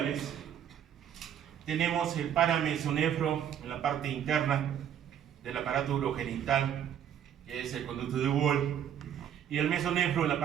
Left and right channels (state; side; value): quieter; left; 9.6 dB